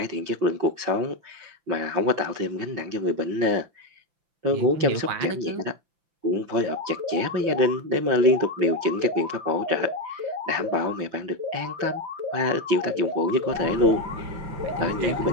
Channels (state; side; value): late; left; 5.8 ms